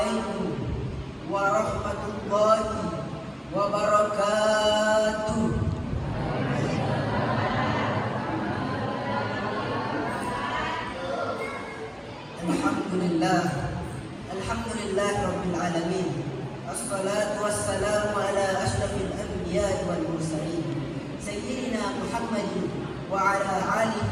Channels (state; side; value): identical; both; correlation 1.00